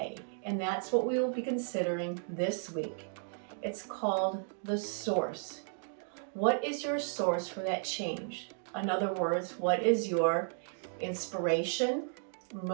and that's what we will be considering this week. It's called the source. What is your source for that change? In other words, what is your inspiration,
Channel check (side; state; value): left; silent; 55 dB below the other